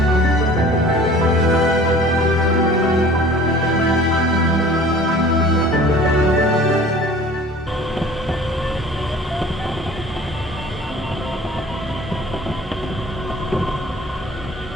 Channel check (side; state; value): both; normal; correlation 0.47